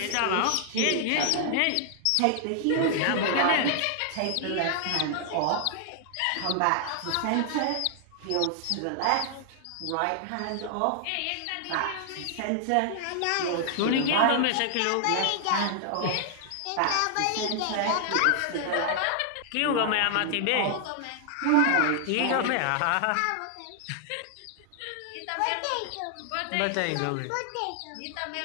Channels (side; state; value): both; different; correlation 0.00